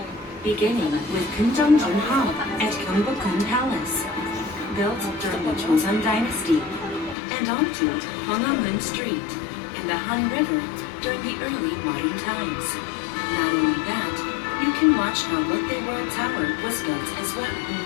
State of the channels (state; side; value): drops out; right; at 7.2 s